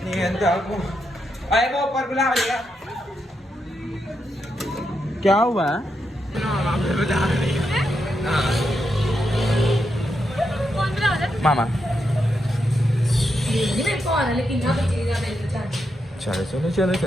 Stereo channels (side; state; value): both; normal; correlation 0.83